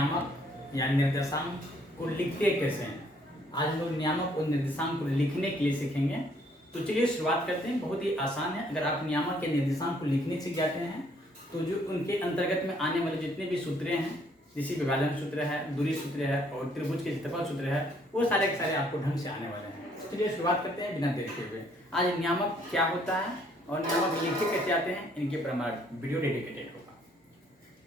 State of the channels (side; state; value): both; normal; correlation 0.65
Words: या निर्देशांक को लिखते कैसे हैं। आज हम लोग नियामक और निर्देशांक को लिखने के लिए सीखेंगे। तो चलिए शुरुआत करते हैं। बहुत ही आसान है। अगर आप नियामक या निर्देशांक को लिखने सीख जाते हैं तो जो उनके अंतर्गत में आने वाले जितने भी सूत्र हैं, जैसे विभाजन सूत्र है, दूरी सूत्र है और त्रिभुज के क्षेत्रफल सूत्र है, वो सारे के सारे आपको ढंग से आने वाले हैं। चलिए शुरुआत करते हैं बिना देर के हुए। आज नियामक क्या होता है और नियामक लिखे कैसे आते हैं, इनके पर हमारा वीडियो डेडिकेटेड होगा।